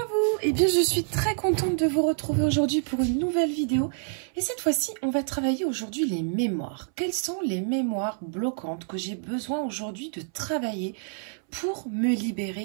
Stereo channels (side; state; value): left; silent; 60 dB below the other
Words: vous, eh bien je suis très contente de vous retrouver aujourd'hui pour une nouvelle vidéo et cette fois-ci on va travailler aujourd'hui les mémoires. Quelles sont les mémoires bloquantes que j'ai besoin aujourd'hui de travailler pour me